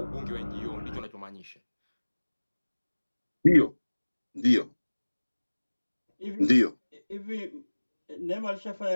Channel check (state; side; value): inverted; both; correlation -1.00